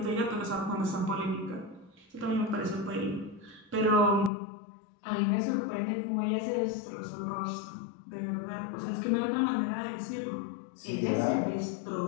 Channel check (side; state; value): right; drops out; at 4.3 s